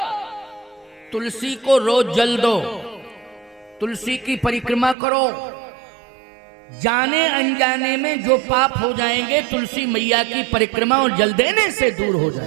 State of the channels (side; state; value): left; drops out; at 5.0 s